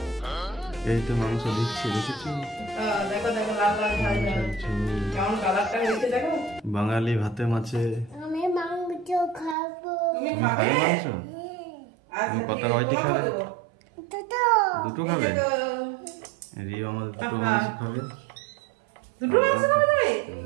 এই তো মাংস দিচ্ছি, দেখেছো? দেখো দেখো লাল লাল ঝাল ঝাল কেমন কালারটা হয়েছে দেখো। বাঙালি ভাতে মাছে। আমি মাংস খাবো। তুমি তুমি খাবে খাবে মাংস? আচ্ছা, তুমি কত রয়টি খাবে? দুটো খাবে? রিও আমাদের দুটো মাংস খাবে। দুটো মাংস খাবে তুমি?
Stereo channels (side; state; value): left; drops out; at 9.6 s